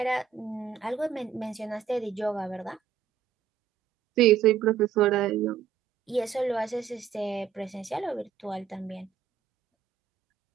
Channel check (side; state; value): left; quieter; 7.6 dB